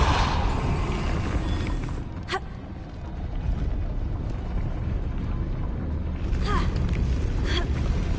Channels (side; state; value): both; identical; correlation 1.00